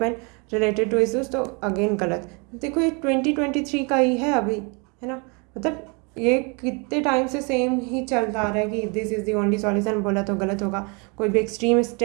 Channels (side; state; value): left; quieter; 31.9 dB